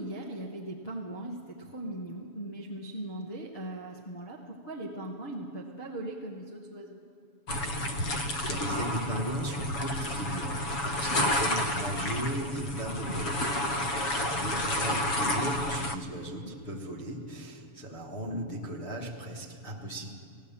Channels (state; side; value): late; right; 7.1 ms